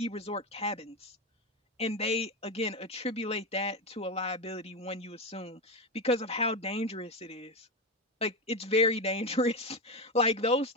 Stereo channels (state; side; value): normal; both; correlation 0.15